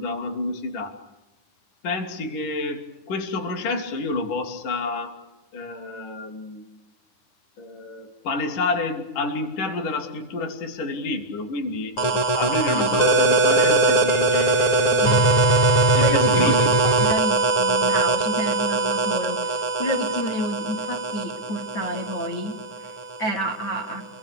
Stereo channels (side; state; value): right; late; 9.5 ms